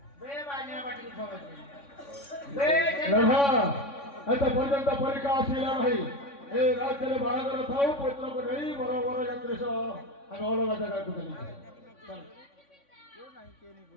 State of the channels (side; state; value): right; late; 3.6 ms